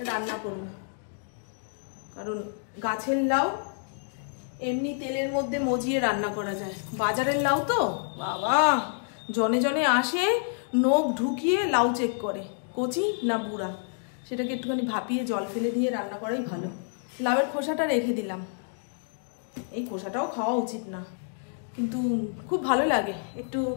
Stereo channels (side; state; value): right; silent; digital silence